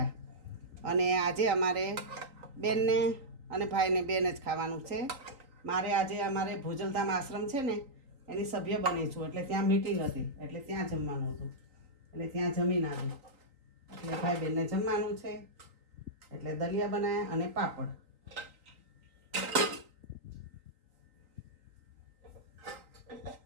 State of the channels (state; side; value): late; left; 3.9 ms